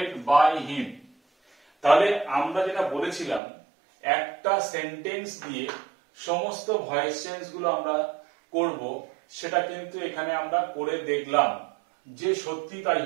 by him। তাহলে আমরা যেটা বলেছিলাম একটা সেন্টেন্স দিয়ে সমস্ত ভয়েস চেঞ্জ গুলো আমরা করব, সেটা কিন্তু এখানে আমরা করে দেখলাম যে সত্যি তাই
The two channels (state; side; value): drops out; left; at 3.4 s